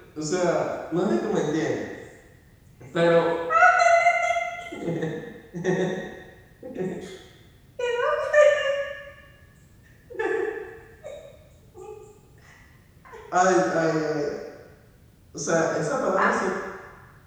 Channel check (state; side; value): identical; both; correlation 1.00